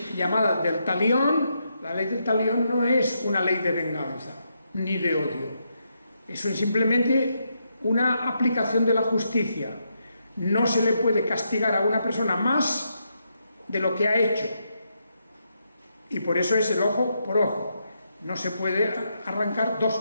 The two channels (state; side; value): inverted; both; correlation -0.81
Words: llamada del talión, la ley del talión no es una ley de venganza, ni de odio. Eso es simplemente una aplicación de la justicia. No se le puede castigar a una persona más de lo que ha hecho. Y por eso es el ojo por ojo. No se puede arrancar dos